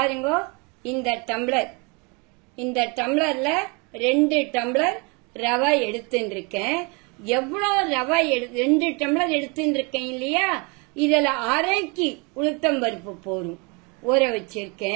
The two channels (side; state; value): left; quieter; 30.8 dB